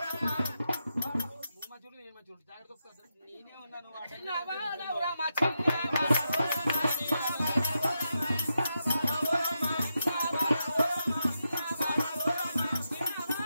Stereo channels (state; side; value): inverted; both; correlation -0.86